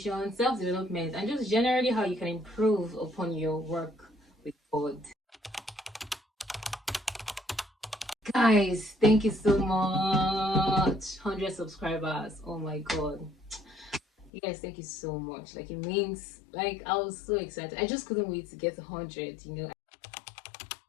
self-development, and just generally how you can improve upon your work with God. Guys, thank you so much. 100 subscribers. Oh my god. You guys, thank you so much. Like, it means, like, I was so excited. I just couldn't wait to get 100,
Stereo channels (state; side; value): drops out; right; at 14.3 s